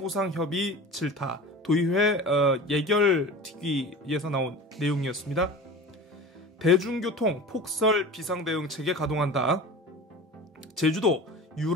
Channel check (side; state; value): both; normal; correlation 0.36